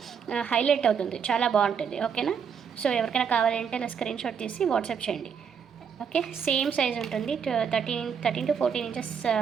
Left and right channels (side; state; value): left; quieter; 7.0 dB